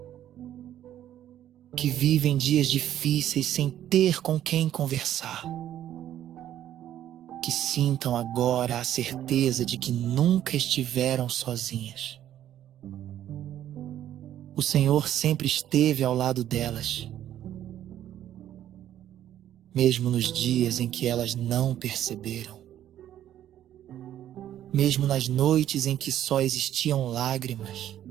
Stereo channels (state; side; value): quieter; left; 11.6 dB